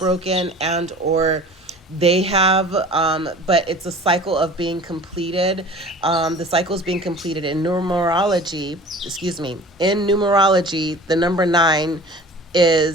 and or they have, but it's a cycle of being completed. The cycle is being completed in numerology. In numerology, the number 9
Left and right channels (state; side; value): normal; both; correlation 0.43